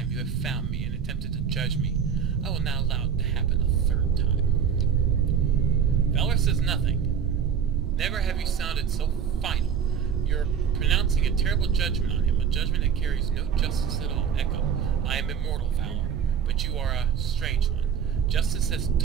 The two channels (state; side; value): quieter; left; 7.4 dB